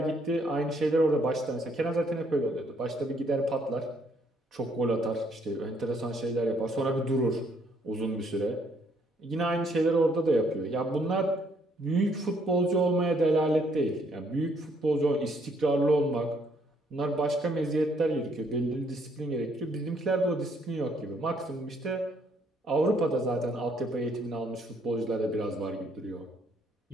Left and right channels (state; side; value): normal; both; correlation 0.68